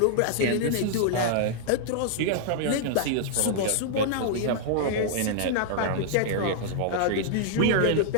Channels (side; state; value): both; different; correlation -0.01